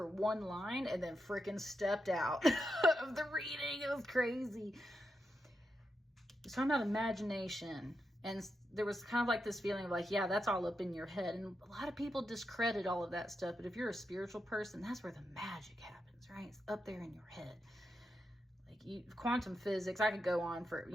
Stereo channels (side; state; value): both; normal; correlation 0.86